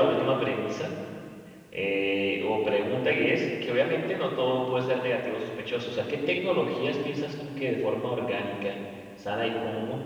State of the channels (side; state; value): both; identical; correlation 1.00